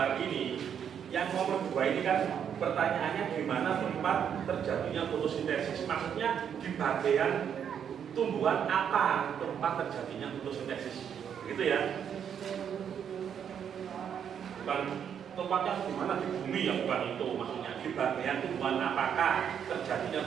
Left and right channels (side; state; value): left; quieter; 8.3 dB